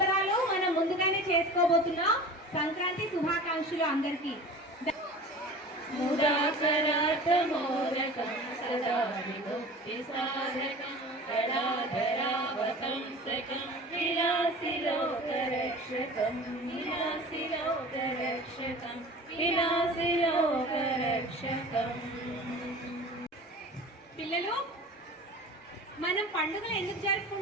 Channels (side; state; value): both; normal; correlation 0.39